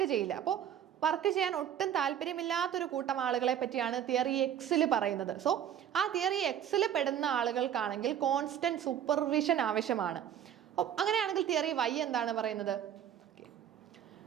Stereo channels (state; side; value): quieter; left; 9.8 dB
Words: ചെയ്യില്ല. അപ്പോൾ വർക്ക് ചെയ്യാൻ ഒട്ടും താല്പര്യമില്ലാത്തൊരു കൂട്ടം ആളുകളെ പറ്റിയാണ് തിയറി എക്സിൽ പറയുന്നത്. സോ ആ തിയറി എക്സിൽ പെടുന്ന ആളുകൾക്കാണെങ്കിൽ കോൺസ്റ്റന്റ് സൂപ്പർവിഷൻ ആവശ്യമാണ്. അങ്ങനെയാണെങ്കിൽ തിയറി വൈ എന്താണ് പറയുന്നത്?